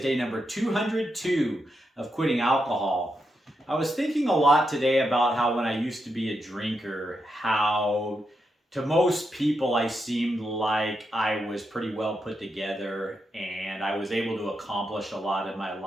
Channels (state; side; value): normal; both; correlation 0.84